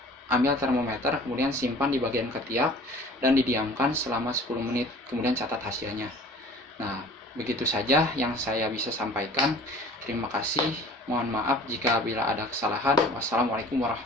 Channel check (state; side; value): normal; both; correlation 0.46